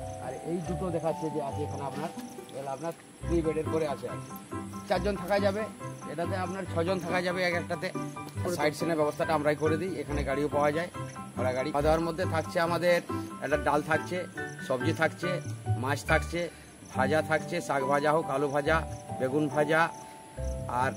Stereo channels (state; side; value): identical; both; correlation 1.00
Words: আর এই দুটো দেখাচ্ছে যে আছে এখানে আপনার, এগুলো আপনার 3 বেডের করে আছে। 4 জন থাকা যাবে, এটাতে আপনার 6 জন থাকা যাবে এক একটাতে। সাইড সিনের ব্যবস্থাটা আমরাই করে দিই, এখানে গাড়িও পাওয়া যায়, ভাড়া গাড়ি। খাওয়া দাওয়ার মধ্যে থাকছে আমাদের একটা ডাল থাকছে, সবজি থাকছে, মাছ থাকছে, ভাজা থাকছে, শাক ভাজা হোক, আলু ভাজা, বেগুন ভাজা, আর